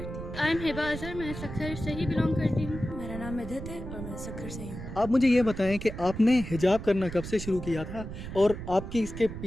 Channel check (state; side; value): noise; right; rumble, 9 dB below the sound